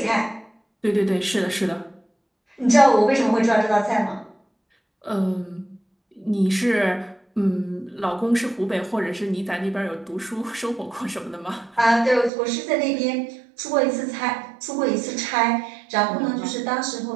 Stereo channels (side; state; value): left; drops out; at 12.3 s